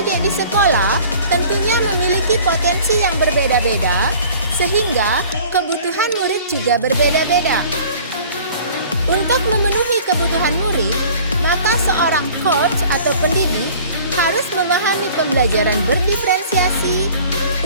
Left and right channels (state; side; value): inverted; both; correlation -0.48